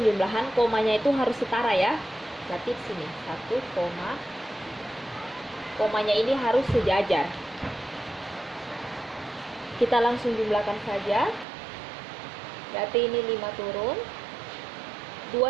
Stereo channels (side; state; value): left; drops out; at 11.5 s